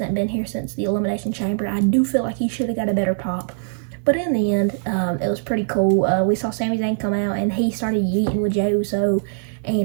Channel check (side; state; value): left; silent; 65 dB below the other